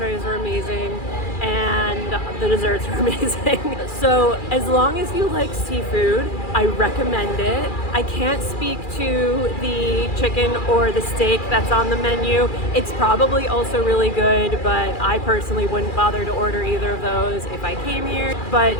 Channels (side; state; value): right; late; 2.4 ms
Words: were amazing, and the desserts were amazing. So as long as you like seafood, I recommend it. I can't speak to the chicken or the steak that's on the menu. It's probably also really good, but I personally wouldn't bother to order either of those if I came here. But